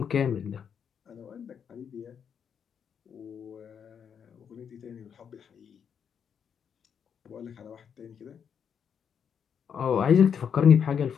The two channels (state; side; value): quieter; right; 7.5 dB